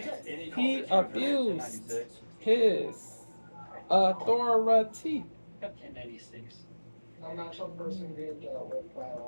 He abused his authority. Up 1096. A mental person being dealt with by an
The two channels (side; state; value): both; inverted; correlation -1.00